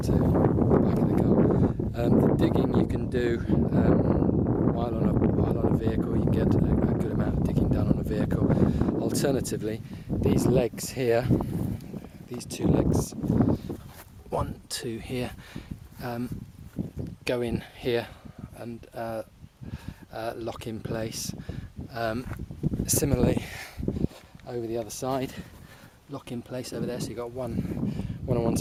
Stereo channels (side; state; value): both; identical; correlation 1.00